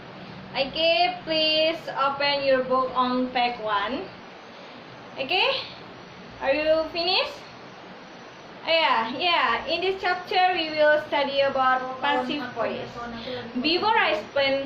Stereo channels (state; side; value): identical; both; correlation 1.00